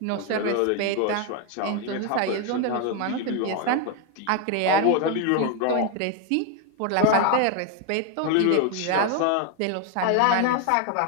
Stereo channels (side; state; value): both; different; correlation 0.01